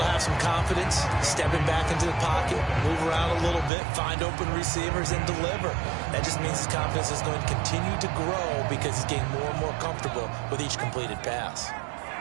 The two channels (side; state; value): left; drops out; at 3.7 s